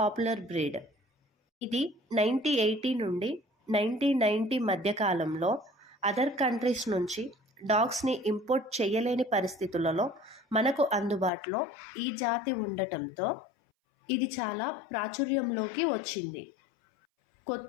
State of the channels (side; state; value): right; drops out; at 11.3 s